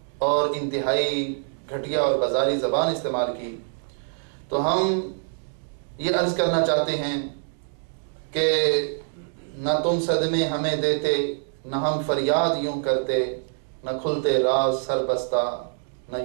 اور انتہائی گھٹیا اور بازاری زبان استعمال کی۔ تو ہم یہ عرض کرنا چاہتے ہیں کہ نہ تم صدمے ہمیں دیتے، نہ ہم فریاد یوں کرتے، نہ کھلتے راز سر بستہ نہ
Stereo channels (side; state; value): left; silent; digital silence